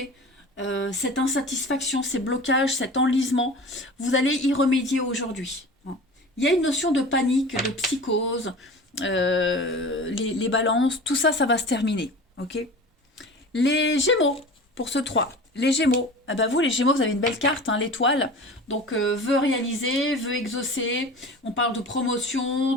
cette insatisfaction, ces blocages, cet enlisement, vous allez y remédier aujourd'hui. Il y a une notion de panique, de psychose, les balances, tout ça, ça va se terminer. Ok. Les Gémeaux, pour ce 3. Les Gémeaux, ah ben vous les Gémeaux, vous avez une belle carte, hein, l'étoile. Donc veut réaliser, veut exaucer. On parle de promotion,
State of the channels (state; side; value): normal; both; correlation 0.37